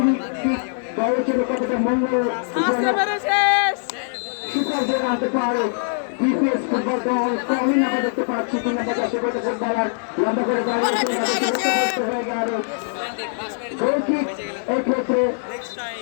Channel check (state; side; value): silent; right; 61 dB below the other